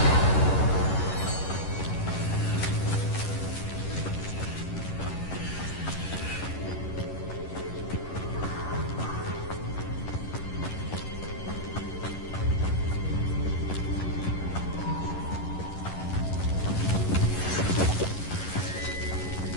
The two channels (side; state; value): right; late; 11 ms